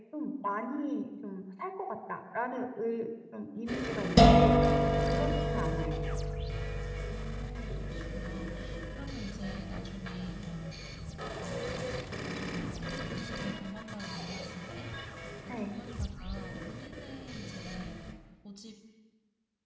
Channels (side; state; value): both; identical; correlation 1.00